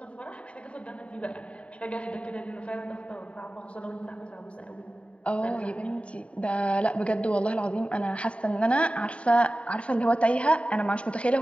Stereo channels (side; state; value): right; late; 0.062 ms